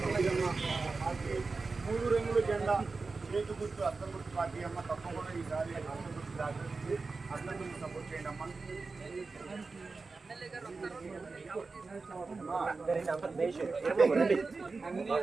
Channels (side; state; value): left; quieter; 4.1 dB